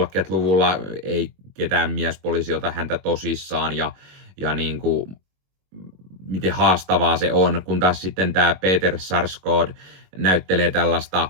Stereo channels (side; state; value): left; late; 21 ms